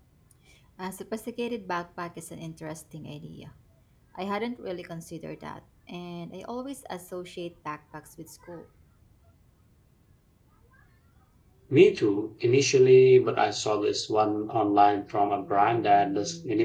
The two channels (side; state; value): both; identical; correlation 1.00